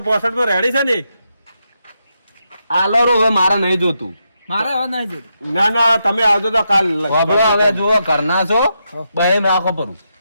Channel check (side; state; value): both; inverted; correlation -0.83